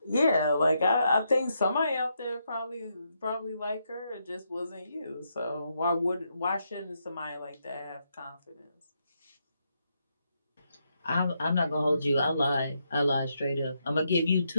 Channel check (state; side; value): inverted; both; correlation -0.80